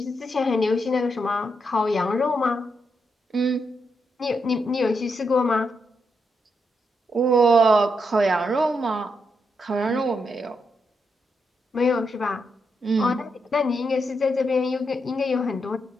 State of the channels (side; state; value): both; normal; correlation 0.82